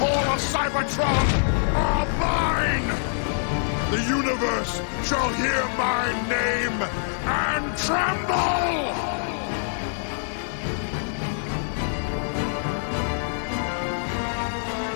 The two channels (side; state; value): right; silent; digital silence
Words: of Cybertron are mine! The universe shall hear my name and tremble!